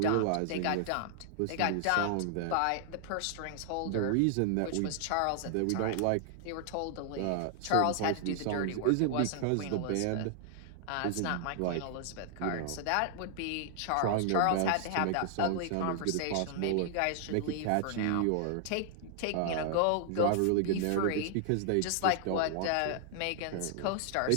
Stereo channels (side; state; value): both; different; correlation 0.00